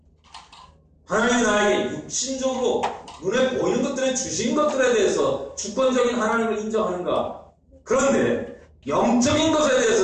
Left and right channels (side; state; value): both; identical; correlation 1.00